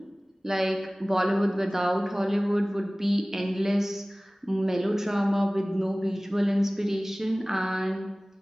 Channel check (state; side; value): normal; both; correlation 0.98